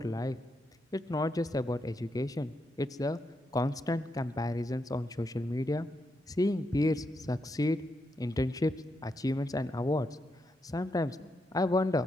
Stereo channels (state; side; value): normal; both; correlation 0.82